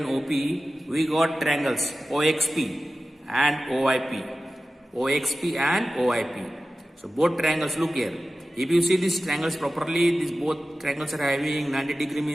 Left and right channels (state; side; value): normal; both; correlation 0.94